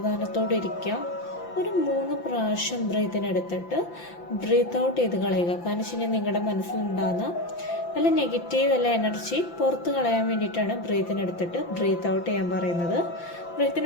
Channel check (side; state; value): right; late; 5.8 ms